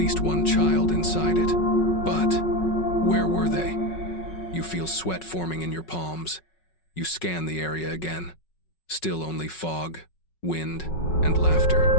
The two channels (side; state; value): right; late; 5.4 ms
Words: one child inside it. But where were they? You feel sweat forming in your palms. You scan the area again. Still only fog, wind, and laughter.